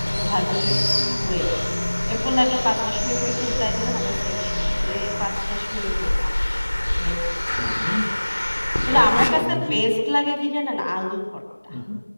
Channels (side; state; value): both; inverted; correlation -1.00